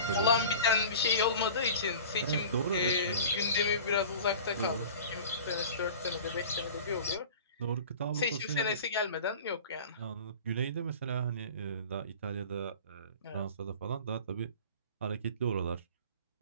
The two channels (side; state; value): both; inverted; correlation -0.39